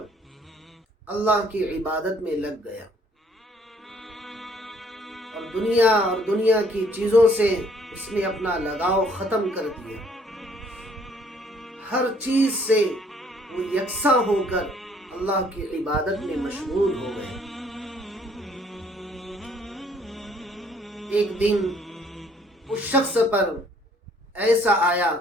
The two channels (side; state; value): both; normal; correlation 0.62